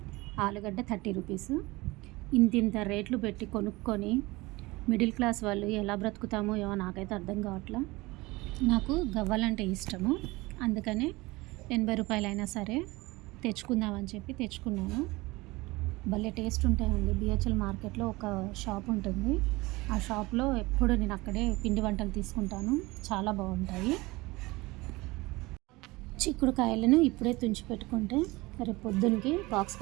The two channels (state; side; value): quieter; left; 21.9 dB